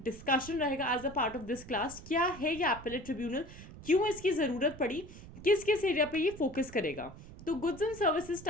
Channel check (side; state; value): right; noise; rumble, 15 dB below the sound